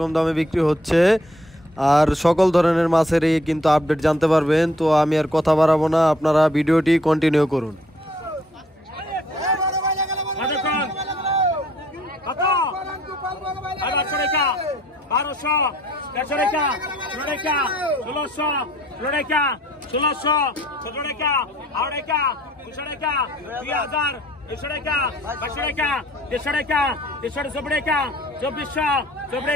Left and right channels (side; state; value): both; normal; correlation 0.61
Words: দামে বিক্রি হচ্ছে আর সকল ধরনের মাছের এই কিন্তু আপডেট জানতে পারবেন। তো আমি আর কথা বাড়াবো না, আপনারা ভিডিওটি কন্টিনিউ করুন। বারোশো, দেড়শো টাকা, ষোলো টাকা, 1600, 16 টাকা, 1600, 17 টাকা, 8 টাকা, 200 টাকা, 2000, 200 টাকা, 500 টাকা, 150 টাকা, 150 টাকা, 2400, 24